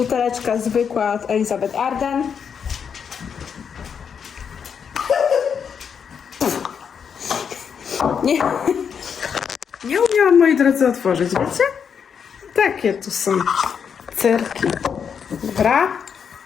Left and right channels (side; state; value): right; quieter; 7.0 dB